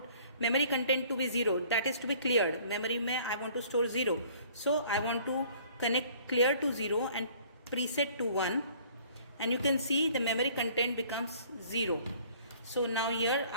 memory content to be 0, that is to be cleared. Memory mein I want to store 0. So I want to connect clear to 0 and preset to 1, and you can see the memory content becomes 0. So now here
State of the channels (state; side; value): inverted; both; correlation -0.54